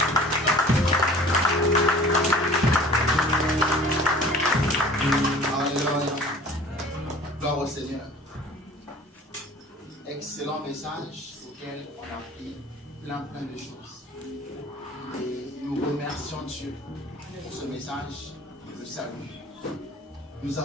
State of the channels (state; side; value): normal; both; correlation 0.45